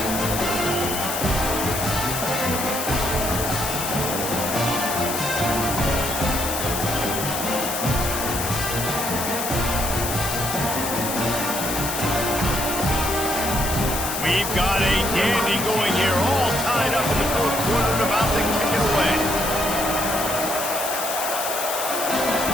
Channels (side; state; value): left; noise; hiss, 4 dB below the sound